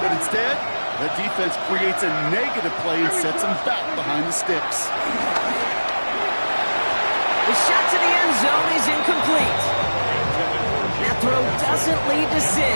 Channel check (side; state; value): both; inverted; correlation -1.00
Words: instead, the defense creates a negative play and sets them back behind the sticks. The shot to the end zone is incomplete. That throw doesn't lead to 6.